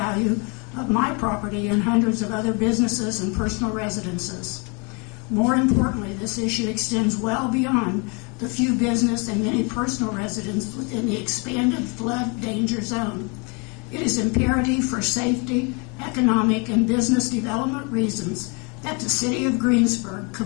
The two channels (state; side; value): quieter; right; 32.4 dB